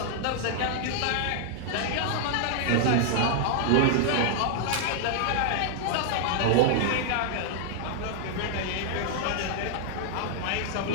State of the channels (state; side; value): different; both; correlation 0.00